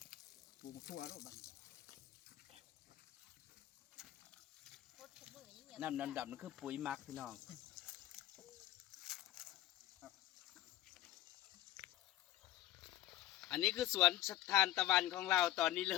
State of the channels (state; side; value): quieter; right; 14.6 dB